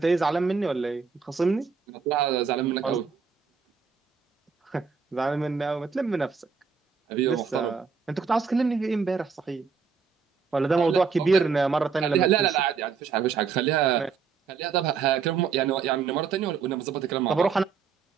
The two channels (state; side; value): quieter; left; 5.7 dB